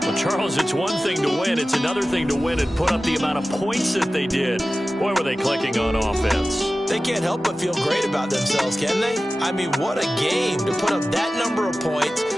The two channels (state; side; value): normal; both; correlation 0.95